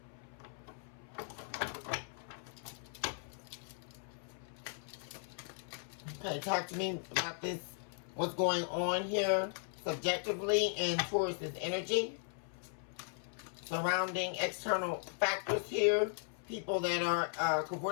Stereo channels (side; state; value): right; silent; 53 dB below the other